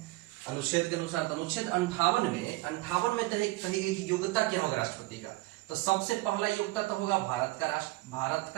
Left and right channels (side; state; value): left; quieter; 20.7 dB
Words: अनुच्छेद के अनुसार। तो अनुच्छेद 58 में कही गई कि योग्यता क्या होगा राष्ट्रपति का। तो सबसे पहला योग्यता तो होगा भारत